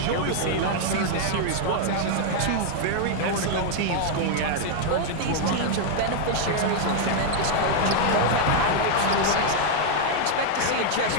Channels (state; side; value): different; both; correlation 0.00